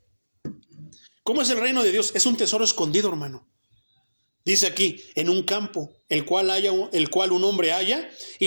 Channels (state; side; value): inverted; both; correlation -1.00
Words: ¿Cómo es el reino de Dios? Es un tesoro escondido, hermano. Dice aquí, en un campo, el cual un hombre halla y